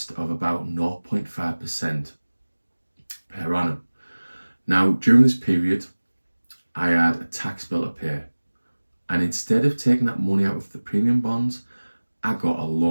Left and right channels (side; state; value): both; inverted; correlation -1.00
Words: of about 0.5% per annum. Now, during this period, I had a tax bill to pay, and instead of taking that money out of the premium bonds, I got a